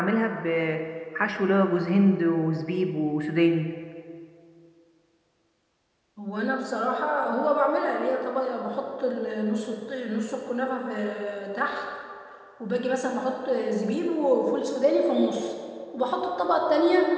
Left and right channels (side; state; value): both; identical; correlation 1.00